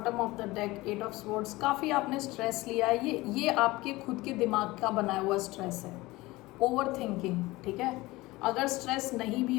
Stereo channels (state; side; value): quieter; right; 20.3 dB